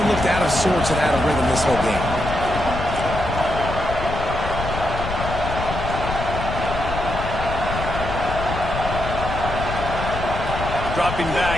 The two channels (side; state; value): left; noise; rumble, 6 dB below the sound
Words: of looked out of sorts and out of rhythm this whole game. Dropping